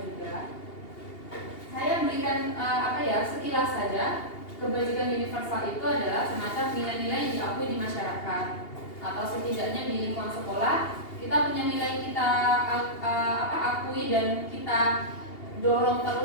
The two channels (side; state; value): right; late; 2.8 ms